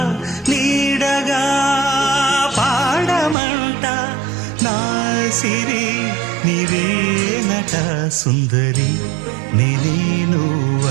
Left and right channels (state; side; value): drops out; left; at 3.4 s